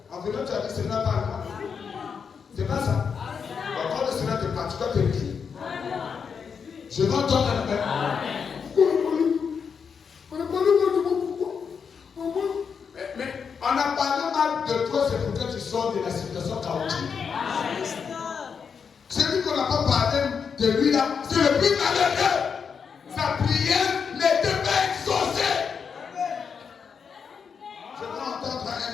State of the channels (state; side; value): quieter; right; 6.3 dB